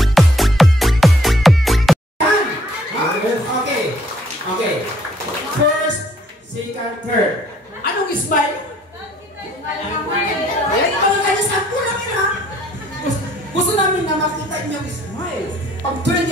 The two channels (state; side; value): normal; both; correlation 0.62